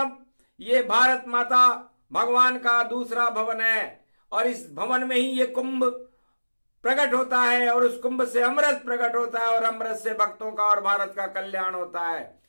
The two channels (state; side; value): inverted; both; correlation -1.00